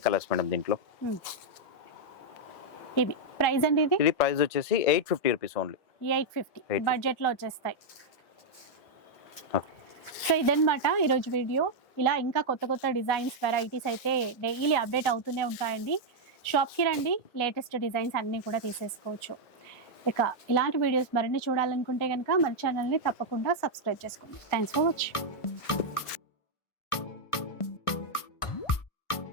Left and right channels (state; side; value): late; right; 1.5 ms